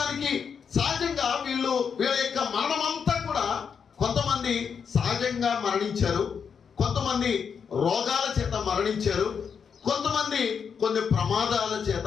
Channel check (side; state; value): right; quieter; 6.7 dB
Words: సహజంగా వీళ్ళ యొక్క మరణం అంతా కూడా కొంతమంది సహజంగా మరణించారు, కొంతమంది రోగాల చేత మరణించారు, కొంతమంది కొన్ని ప్రమాదాల